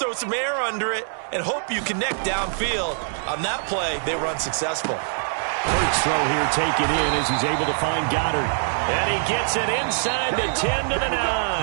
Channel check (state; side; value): silent; left; digital silence